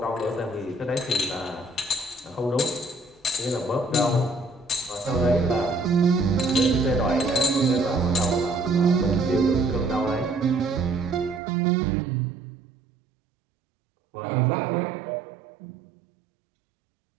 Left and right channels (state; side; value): drops out; left; at 11.4 s